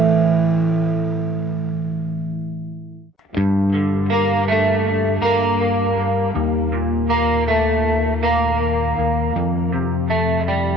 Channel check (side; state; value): both; normal; correlation 0.59